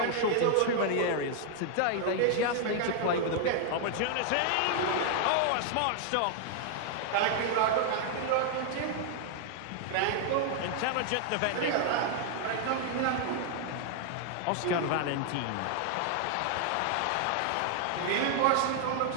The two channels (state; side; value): different; both; correlation 0.00